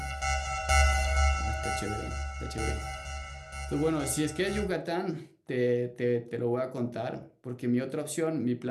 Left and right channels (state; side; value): identical; both; correlation 1.00